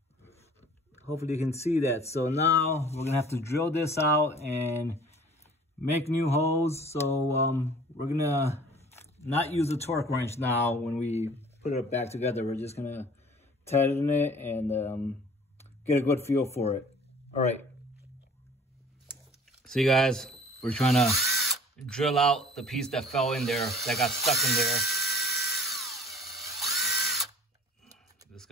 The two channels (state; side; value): normal; both; correlation 0.49